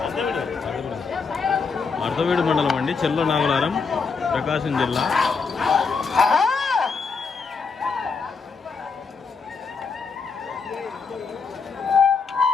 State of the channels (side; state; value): right; quieter; 5.1 dB